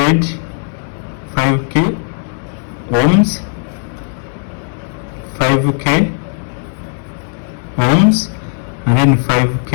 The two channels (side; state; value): right; silent; digital silence